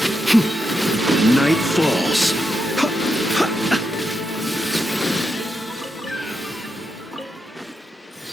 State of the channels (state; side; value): normal; both; correlation 0.84